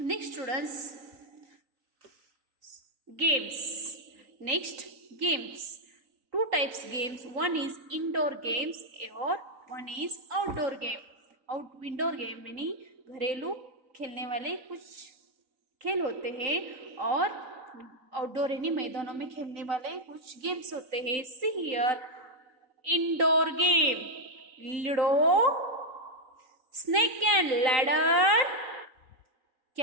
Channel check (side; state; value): left; late; 3.9 ms